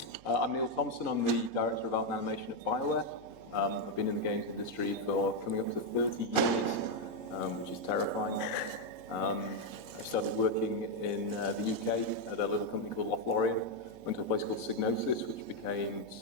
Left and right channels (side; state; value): right; noise; hum, 24 dB below the sound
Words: I'm Neil Thompson. I'm the Director of Art and Animation at BioWare. I've been in the games industry for coming up to 30 years, which is terrifying. I started working in the UK at a little company called Lothlorien, went to a place called Psygnosis, which became